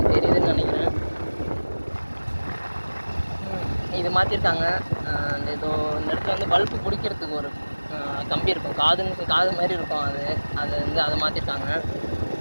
தெரியுதுன்னு நினைக்கிறேன். இது மாற்றிருக்காங்க. அந்த இந்த இடத்துல வந்து பல்பு பிடிக்கிறதுக்கு ஒரு கம்பி இருக்கும், காது மாதிரி இருக்கும். அது வந்து அதை மாற்றிருக்காங்க.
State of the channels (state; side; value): inverted; both; correlation -1.00